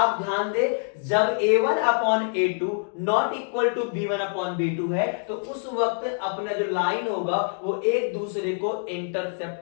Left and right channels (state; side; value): silent; right; 58 dB below the other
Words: ध्यान दे, जब a1 upon a2 not equal to b1 upon b2 है, तो उस वक्त अपना जो लाइन होगा वो एक दूसरे को